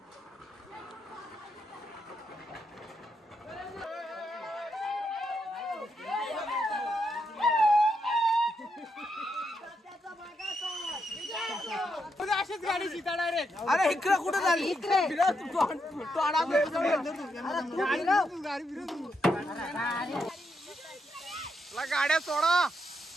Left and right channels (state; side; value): normal; both; correlation 0.81